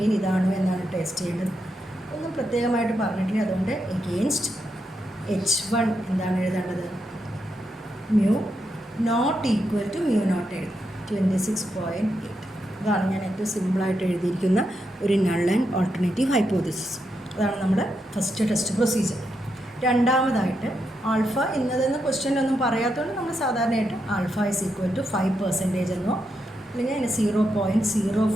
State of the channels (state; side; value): normal; both; correlation 0.83